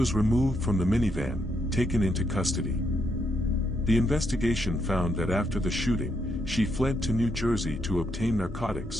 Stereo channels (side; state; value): both; normal; correlation 0.77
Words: removed from the minivan, taken into custody. The investigation found that after the shooting, she fled to New Jersey to obtain